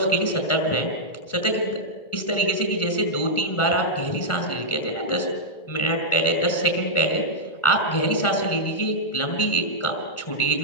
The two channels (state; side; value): late; right; 1.4 ms